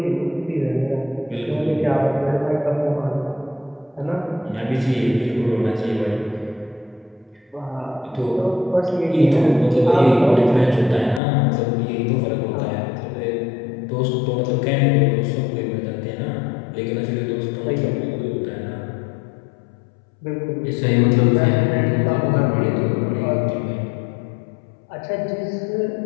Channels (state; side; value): drops out; right; at 11.2 s